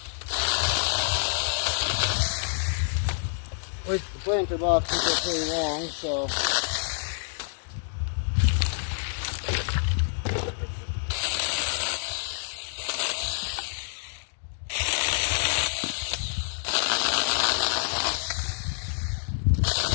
Which the planter boxes are pretty long, so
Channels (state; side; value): silent; right; digital silence